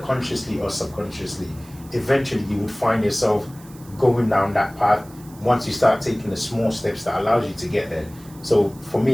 consciously or subconsciously. Eventually you would find yourself going down that path once you start taking the small steps that allows you to get there. So for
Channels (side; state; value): right; noise; hiss, 23 dB below the sound